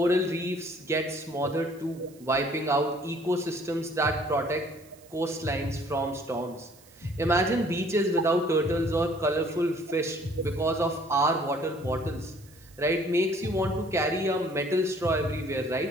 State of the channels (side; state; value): right; noise; hiss, 26 dB below the sound